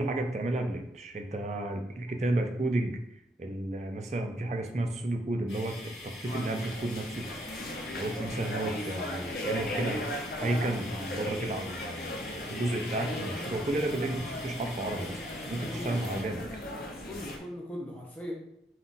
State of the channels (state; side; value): normal; both; correlation 0.71